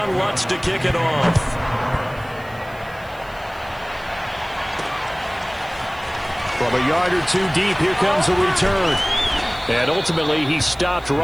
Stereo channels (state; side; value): noise; right; hiss, 26 dB below the sound